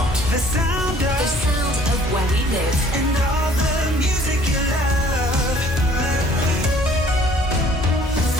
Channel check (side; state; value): both; normal; correlation 0.56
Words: The sound of. The sound of where we live. And all the music you love.